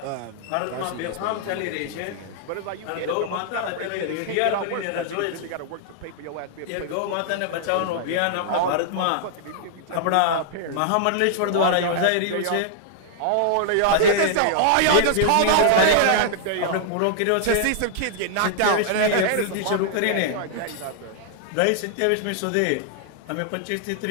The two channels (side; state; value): both; different; correlation -0.01